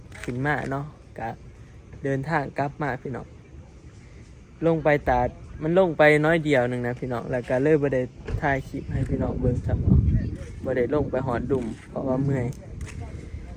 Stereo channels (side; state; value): both; identical; correlation 1.00